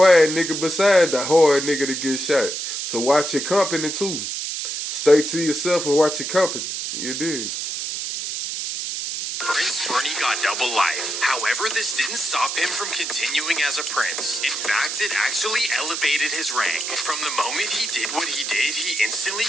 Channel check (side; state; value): right; noise; hiss, 4 dB below the sound